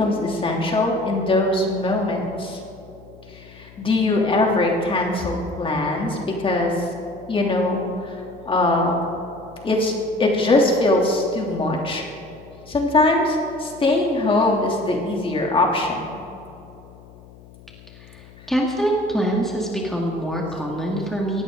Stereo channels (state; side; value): noise; left; hum, 22 dB below the sound